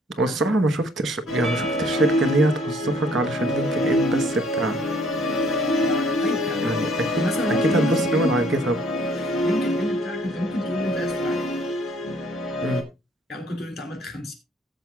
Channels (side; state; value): both; normal; correlation 0.61